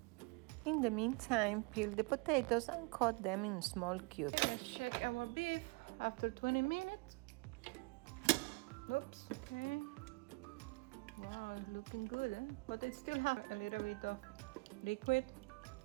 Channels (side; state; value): left; quieter; 27.8 dB